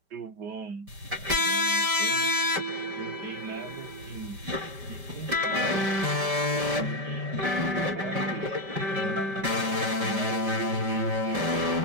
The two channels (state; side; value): late; left; 5.1 ms